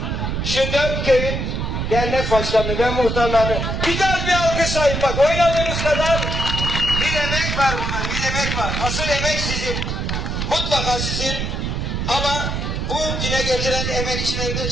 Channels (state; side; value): noise; right; rumble, 2 dB below the sound